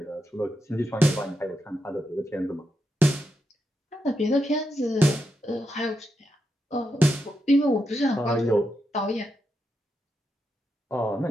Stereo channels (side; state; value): both; normal; correlation 0.84